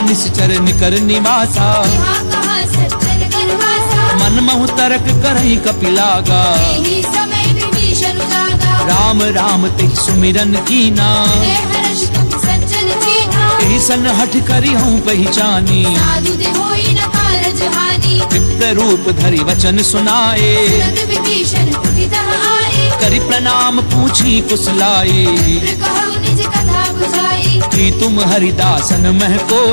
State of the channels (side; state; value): both; inverted; correlation -1.00